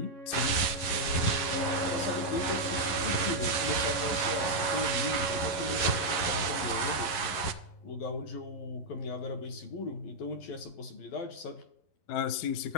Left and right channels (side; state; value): right; late; 11 ms